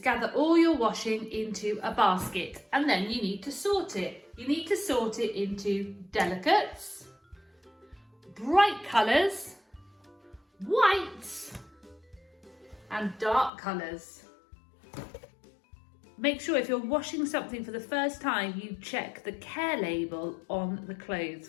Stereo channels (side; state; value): right; drops out; at 13.5 s